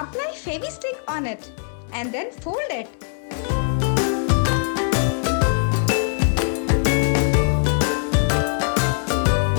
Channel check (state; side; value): silent; right; 65 dB below the other